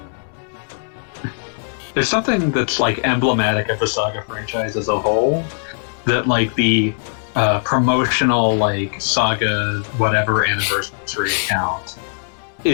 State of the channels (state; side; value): silent; right; 66 dB below the other